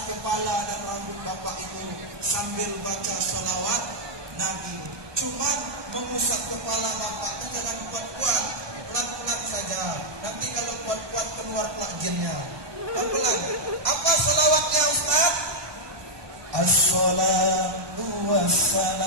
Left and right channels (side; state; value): left; late; 1.2 ms